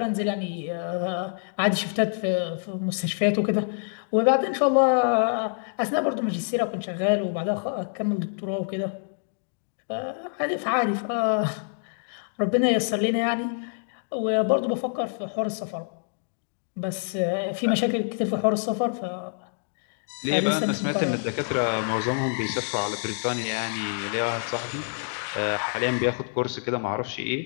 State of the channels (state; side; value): silent; right; digital silence